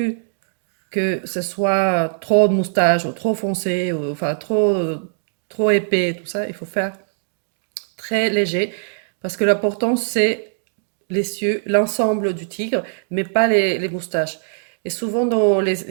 que ce soit trop de moustaches ou trop foncé, ou, enfin trop épais, tout ça. Il faut faire très léger, parce que l'important c'est les cieux, l'ensemble du tigre, mais pas les moustaches. Et souvent dans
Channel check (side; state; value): left; silent; digital silence